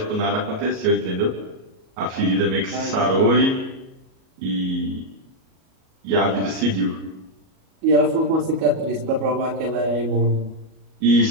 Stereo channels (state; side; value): late; left; 37 ms